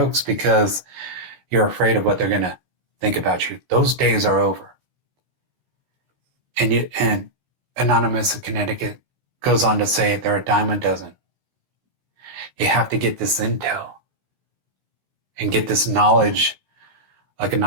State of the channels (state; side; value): late; left; 16 ms